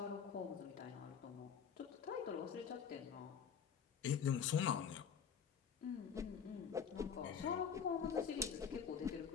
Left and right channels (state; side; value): quieter; right; 7.2 dB